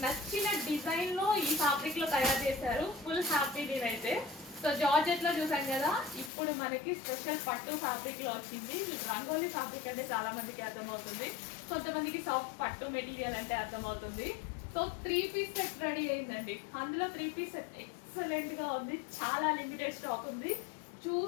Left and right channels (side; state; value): right; drops out; at 6.3 s